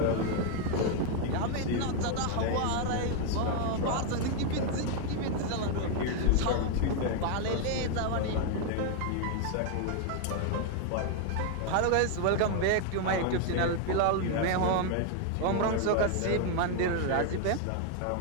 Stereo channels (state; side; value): different; both; correlation 0.01